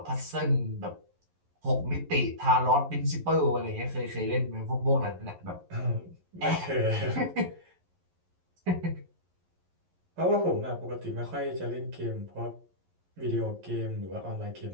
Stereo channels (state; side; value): late; left; 11 ms